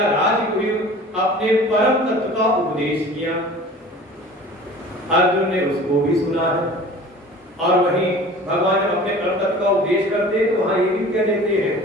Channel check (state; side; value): normal; both; correlation 0.43